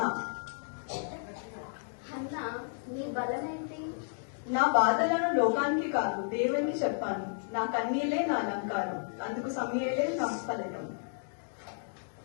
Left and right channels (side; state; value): right; silent; digital silence